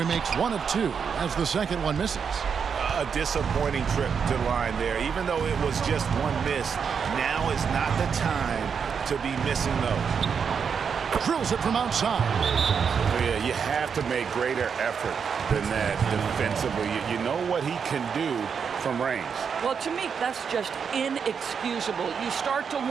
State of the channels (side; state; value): left; quieter; 6.6 dB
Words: makes 1 of 2 as the second one misses. A disappointing trip to the line there. Even though it was just one miss, now is not the time to be missing those. Drills it from outside. Yeah, you have to make greater effort than that defensively. You know what he can do from range. Well, to me, that's just inexcusable. You start to